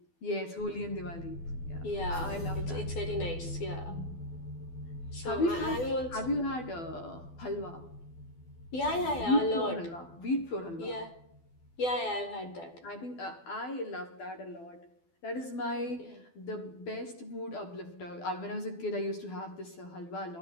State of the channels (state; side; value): late; right; 12 ms